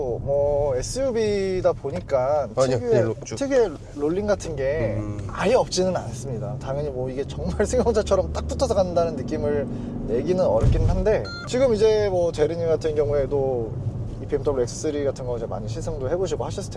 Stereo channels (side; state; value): both; identical; correlation 1.00